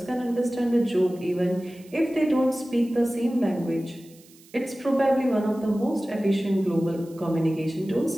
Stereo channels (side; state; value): right; noise; hiss, 26 dB below the sound